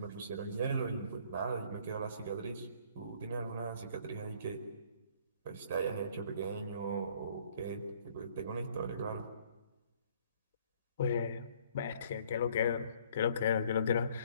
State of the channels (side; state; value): both; inverted; correlation -0.59